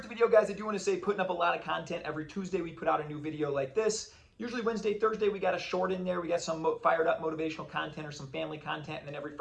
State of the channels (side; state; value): both; identical; correlation 1.00